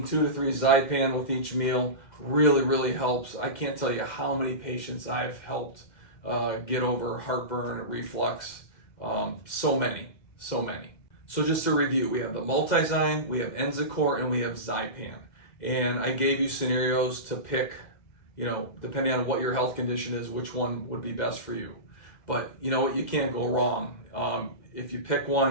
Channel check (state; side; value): late; right; 2.1 ms